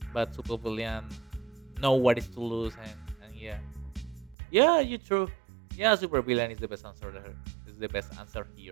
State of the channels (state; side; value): drops out; left; at 4.4 s